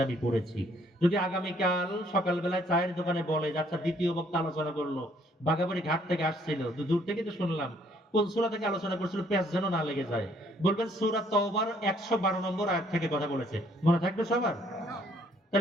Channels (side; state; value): both; normal; correlation 0.64